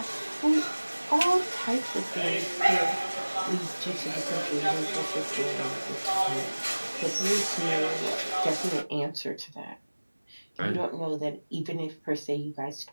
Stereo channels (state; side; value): inverted; both; correlation -1.00